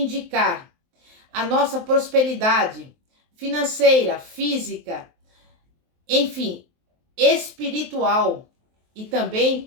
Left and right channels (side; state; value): left; late; 23 ms